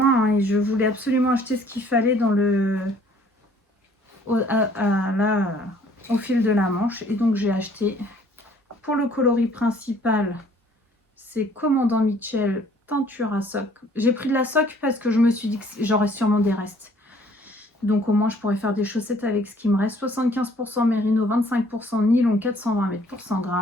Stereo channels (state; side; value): normal; both; correlation 0.58